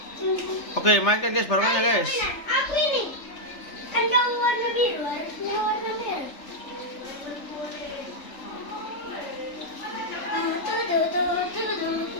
Oke, mainkan guys barongannya guys. Aku ini kan kamu warna biru, harusnya warna merah.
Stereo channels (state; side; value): late; right; 3.3 ms